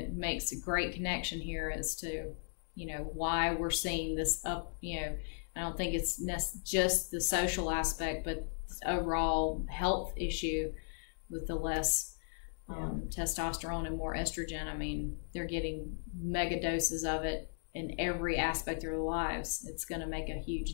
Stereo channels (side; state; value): right; silent; digital silence